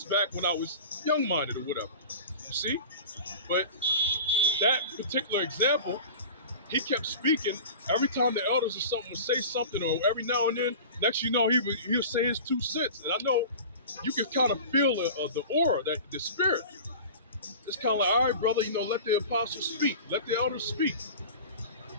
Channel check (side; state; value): both; inverted; correlation -0.36